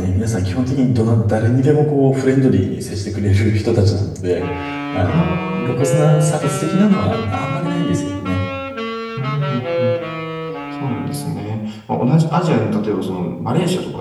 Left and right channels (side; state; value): both; identical; correlation 1.00